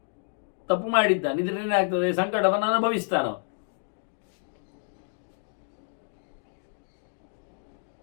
ತಪ್ಪು ಮಾಡಿದ್ದಾನೆ. ಇದರೇನಾಗ್ತದೆ, ಸಂಕಟವನ್ನು ಅನುಭವಿಸ್ತಾನ.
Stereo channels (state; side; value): silent; right; digital silence